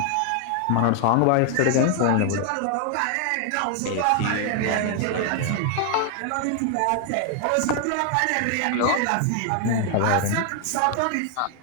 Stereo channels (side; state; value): both; different; correlation 0.00